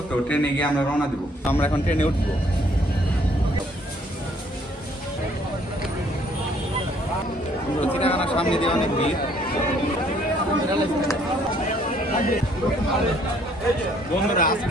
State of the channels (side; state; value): both; normal; correlation 0.63